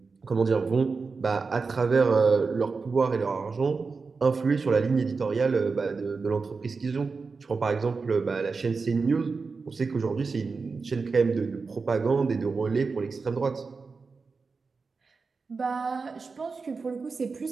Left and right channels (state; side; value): quieter; left; 4.6 dB